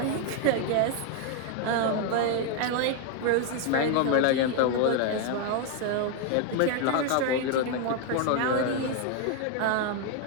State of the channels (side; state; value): both; different; correlation 0.01